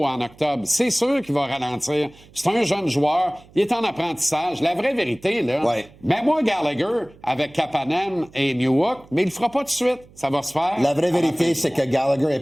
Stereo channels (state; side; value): noise; right; hum, 25 dB below the sound